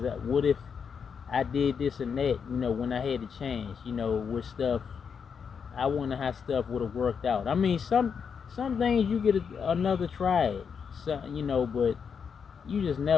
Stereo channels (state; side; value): quieter; right; 6.5 dB